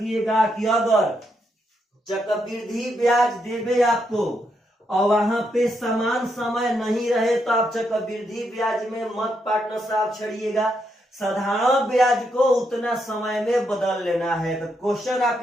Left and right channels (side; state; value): both; normal; correlation 0.79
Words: कि अगर चक्रवृद्धि ब्याज देवे आपको और वहां पे समान समय नहीं रहे तो आप चक्रवृद्धि ब्याज में मत पार्टनर साहब छड़िएगा। साधारण ब्याज को उतना समय में बदल लेना है। तो क्वेश्चन